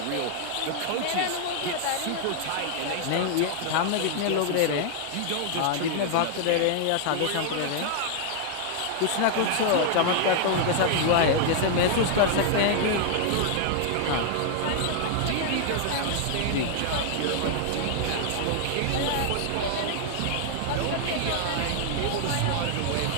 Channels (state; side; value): different; both; correlation 0.00